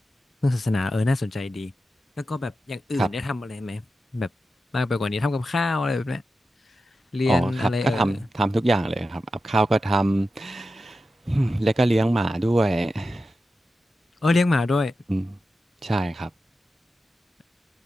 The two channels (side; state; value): both; normal; correlation 0.91